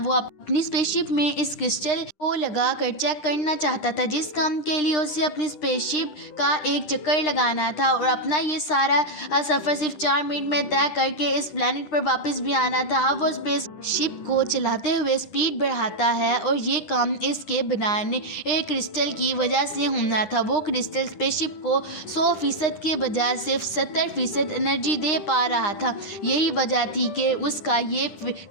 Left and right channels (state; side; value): late; right; 9.8 ms